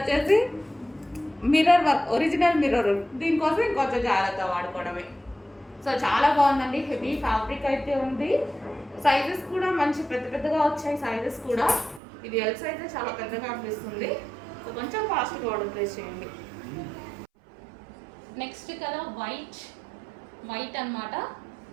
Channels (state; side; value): drops out; left; at 12.0 s